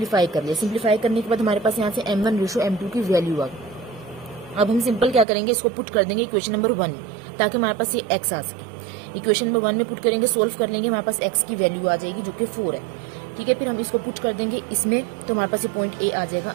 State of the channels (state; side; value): drops out; left; at 5.2 s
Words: कर लिया। सिंप्लीफाई करने के बाद हमारे पास यहाँ से m1 रेशो m2 की वैल्यू आ गई। अब हम सिंपल क्या करेंगे, इसको पुट कर देंगे इक्वेशन नंबर 1 में, ताकि हमारे पास ये x आ सके। इक्वेशन नंबर 1 में पुट करेंगे, सोल्व कर लेंगे, हमारे पास x की वैल्यू आ जाएगी जो कि 4 है। ठीक है, फिर हम इसको पुट कर देंगे इसमें, तो हमारे पास ये पॉइंट ए आ जाएगा